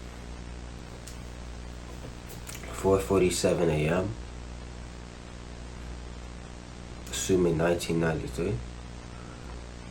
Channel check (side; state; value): both; identical; correlation 1.00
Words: 4:47 a.m. Assuming 1993.